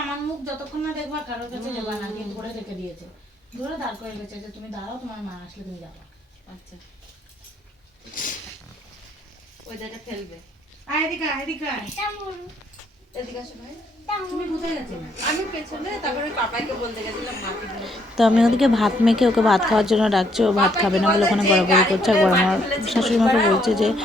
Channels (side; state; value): both; normal; correlation 0.70